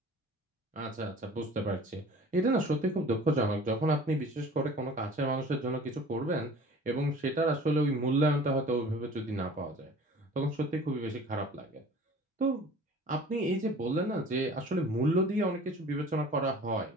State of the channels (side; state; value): both; normal; correlation 0.45